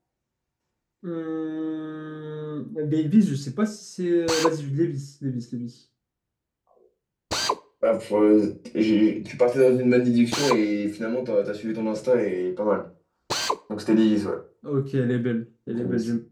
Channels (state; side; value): identical; both; correlation 1.00